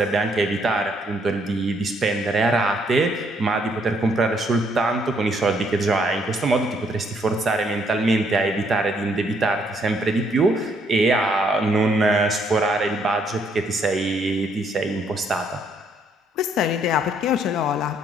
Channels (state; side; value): normal; both; correlation 0.70